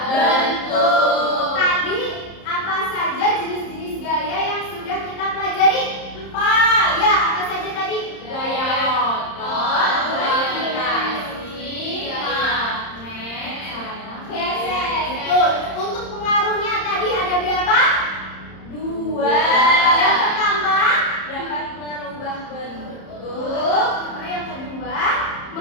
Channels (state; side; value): late; right; 30 ms